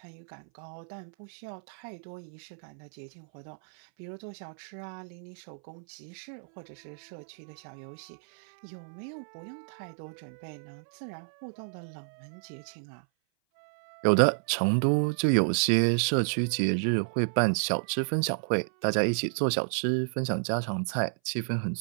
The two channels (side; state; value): left; silent; 57 dB below the other